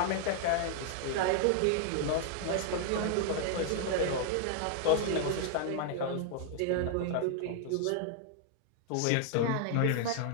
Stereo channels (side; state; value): both; different; correlation 0.00